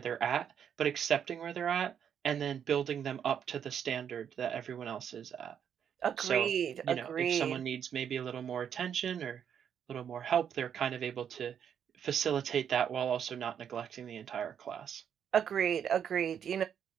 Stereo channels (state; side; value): quieter; left; 8.4 dB